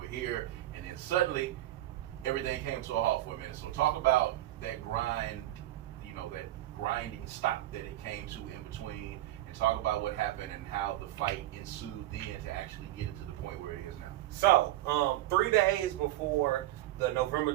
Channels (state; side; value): quieter; left; 15.0 dB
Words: here, and then suddenly everything came to a halt for a minute. So talk about that grind, you know, that grinding stop that it came to in between, and talk about what happened and how the fight ensued then to actually get it to the point where it is now. So 3 days before the November